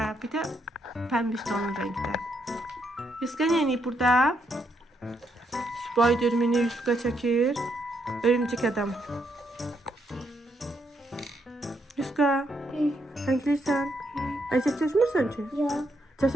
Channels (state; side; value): normal; both; correlation 0.77